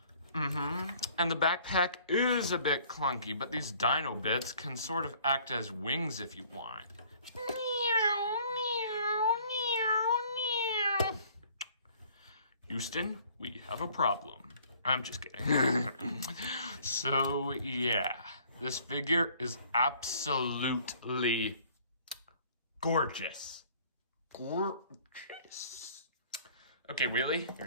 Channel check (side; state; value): both; inverted; correlation -0.56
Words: And the backpack is a bit clunky, but these dino bits can sort of act as wings if you want. Houston, we have a problem. I'm just kidding. So, yeah. This figure is absolutely gorgeous. Gorgeous. Okay, Wheelie,